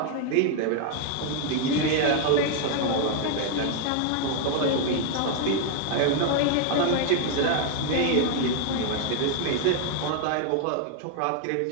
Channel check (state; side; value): different; both; correlation 0.00